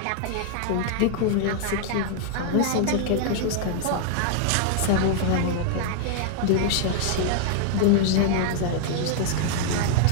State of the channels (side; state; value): both; different; correlation -0.01